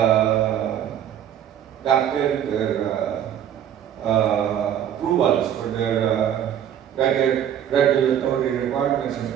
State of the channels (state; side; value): quieter; left; 10.0 dB